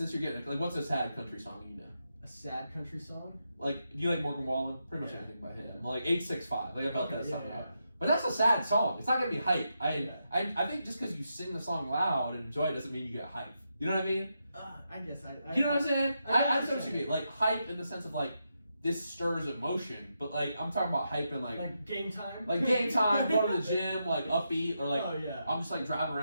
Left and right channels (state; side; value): inverted; both; correlation -0.84